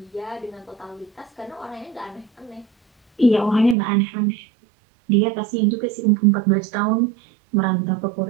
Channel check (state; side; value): drops out; left; at 3.8 s